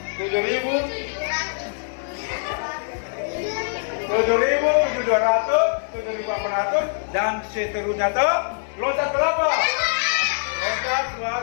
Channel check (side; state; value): right; silent; digital silence